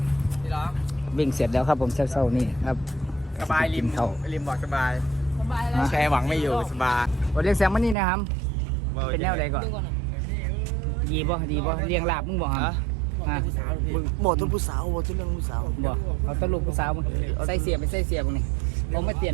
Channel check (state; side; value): drops out; left; at 8.0 s